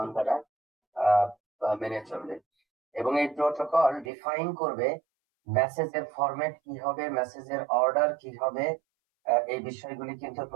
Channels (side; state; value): left; drops out; at 4.1 s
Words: তারা মেনে চলবে। এবং এই প্রোটোকল ডিফাইন করবে মেসেজের ফরম্যাট কি হবে, মেসেজের অর্ডার কি হবে। এই বিষয়গুলি কিন্তু